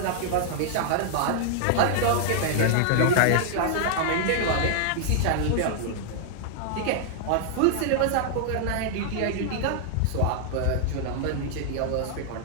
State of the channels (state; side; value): different; both; correlation -0.01